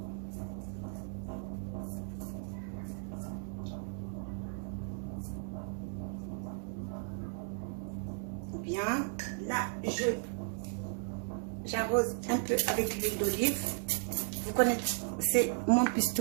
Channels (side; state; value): left; silent; 54 dB below the other